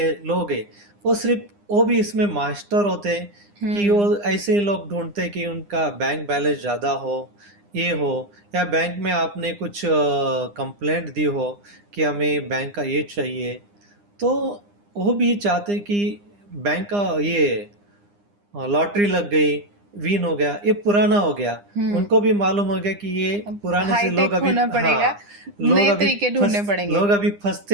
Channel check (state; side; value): late; left; 9.8 ms